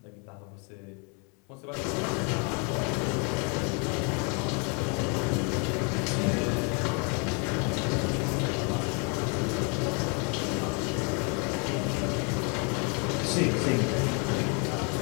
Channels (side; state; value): right; quieter; 35.3 dB